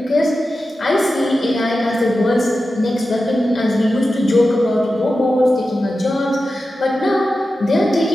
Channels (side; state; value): both; normal; correlation 0.92